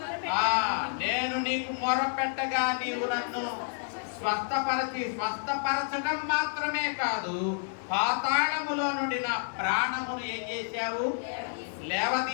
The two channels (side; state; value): right; silent; digital silence